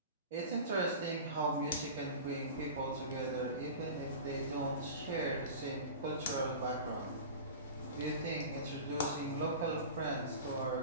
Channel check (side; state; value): both; inverted; correlation -0.33